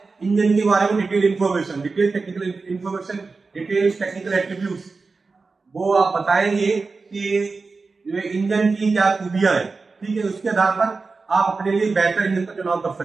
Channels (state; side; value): quieter; left; 4.2 dB